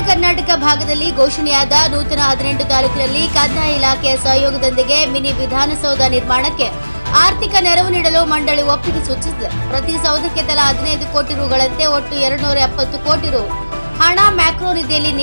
ಕರ್ನಾಟಕ ಭಾಗದಲ್ಲಿ ಘೋಷಣೆಯಾದ ನೂತನ 18 ತಾಲೂಕಿನಲ್ಲಿ ಕಂದಾಯ ಇಲಾಖೆಯ ಸಹಯೋಗದೊಂದಿಗೆ ಮಿನಿ ವಿಧಾನಸೌಧ ನಿರ್ಮಾಣಕ್ಕೆ ಆರ್ಥಿಕ ನೆರವು ನೀಡಲು ಮಂಡಳಿ ಒಪ್ಪಿಗೆ ಸೂಚಿಸಿದೆ. ಪ್ರತಿ ಸೌಧಕ್ಕೆ ತಲಾ 15 ಕೋಟಿ ರುಗಳಂತೆ ಒಟ್ಟು 270 ಕೋಟಿ ರು ಹಣ ಮ್ಯಾಕ್ರೋ ನಿಧಿಯಲ್ಲಿ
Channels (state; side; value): inverted; both; correlation -1.00